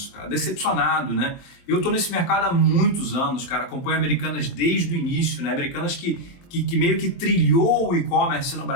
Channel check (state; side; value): late; right; 23 ms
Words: cara, decepcionado, né? Eu tô nesse mercado há muitos anos, cara, acompanho Americanas desde o início, né? Americanas que meio que trilhou o e-commerce no